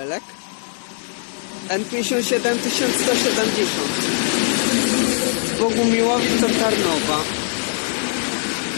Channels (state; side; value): silent; right; 57 dB below the other